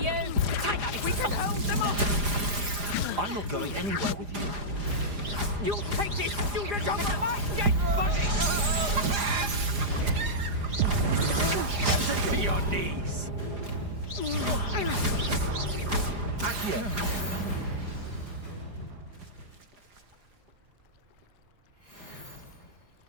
Take us, we can hold them up! I'm not going anywhere with you. You take this student off my dead body! To your knees! Accio!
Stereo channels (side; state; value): left; late; 4.9 ms